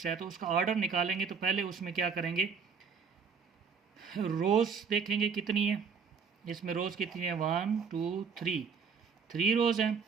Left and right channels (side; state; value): left; quieter; 5.9 dB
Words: है तो उसका ऑर्डर निकालेंगे तो पहले उसमें क्या करेंगे, रोज़ देखेंगे कितनी है। इसमें रोज़ कितनी है? 1 2 3 रोज़ हैं।